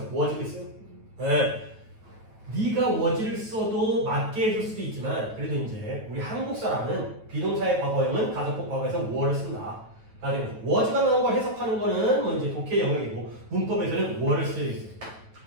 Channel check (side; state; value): left; late; 9.2 ms